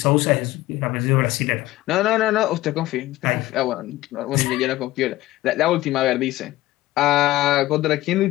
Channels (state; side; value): quieter; right; 16.9 dB